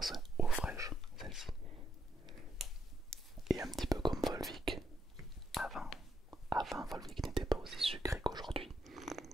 eau fraîche, celle-ci. Et un petit peu comme Volvic. Avant Volvic n'était pas aussi sucré qu'aujourd'hui.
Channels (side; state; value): both; normal; correlation 0.79